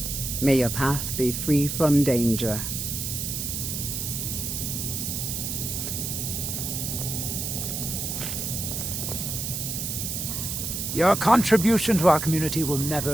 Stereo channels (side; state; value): right; noise; hiss, 3 dB below the sound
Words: May your path be free from danger. Your contribution to our community will